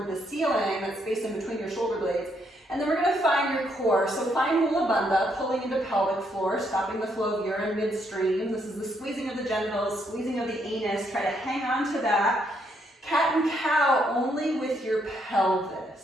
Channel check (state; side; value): normal; both; correlation 0.74